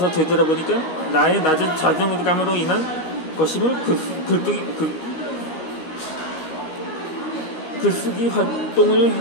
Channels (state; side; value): late; right; 13 ms